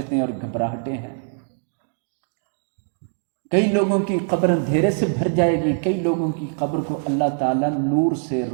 اور گھبراہٹیں ہیں۔ کئی لوگوں کی قبر اندھیرے سے بھر جائے گی، کئی لوگوں کی قبر کو اللہ تعالیٰ نور سے،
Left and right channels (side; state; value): left; silent; 63 dB below the other